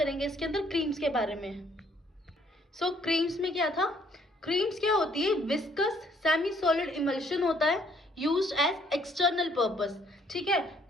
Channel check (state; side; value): normal; both; correlation 0.65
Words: इसके अंदर क्रीम्स के बारे में। क्रीम्स में क्या था? क्रीम्स क्या होती है? विस्कस सेमी सॉलिड इमल्शन होता है, यूज्ड एज एक्सटर्नल पर्पस। ठीक है,